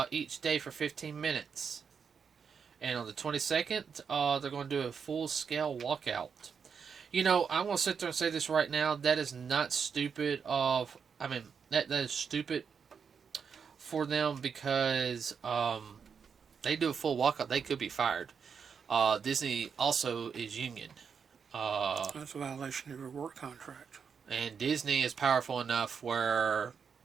for 15 minutes. And on the 22nd, they're going to do a full scale walkout. I'm going to sit there and say this right now. That is not stupid. That is stupid for them, because they do a full walkout, they could be fired. Disney also is union. That's a violation of your work contract. And Disney is powerful enough where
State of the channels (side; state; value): left; quieter; 6.4 dB